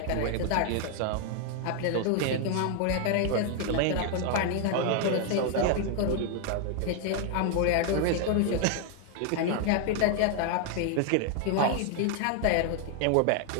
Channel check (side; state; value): both; different; correlation 0.01